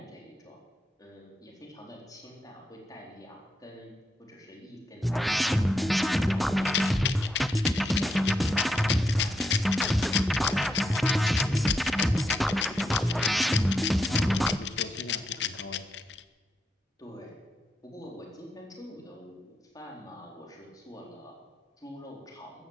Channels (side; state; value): both; normal; correlation 0.83